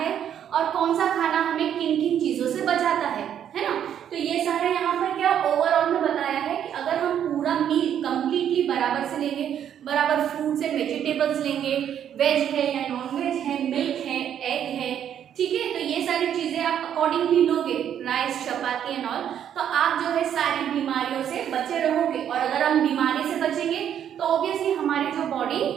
और कौन सा खाना हमें किन किन चीजों से बचाता है ना। तो ये सारे यहाँ पर क्या ओवरऑल में बताया है कि अगर हम पूरा मील कंप्लीटली बराबर से लेंगे, बराबर फ्रूट्स एंड वेजिटेबल्स लेंगे, वेज है या नॉन वेज है, मिल्क है, एग है, ठीक है, तो ये सारी चीजें आप अकॉर्डिंगली लोगे, राइस, चपाती एंड ऑल, तो आप जो है सारी बीमारियों से बचे रहोगे। और अगर हम बीमारी से बचेंगे तो ऑब्वियसली हमारी जो बॉडी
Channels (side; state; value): left; quieter; 9.5 dB